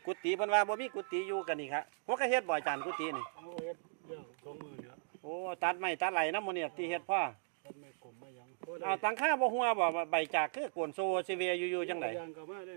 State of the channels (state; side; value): silent; left; digital silence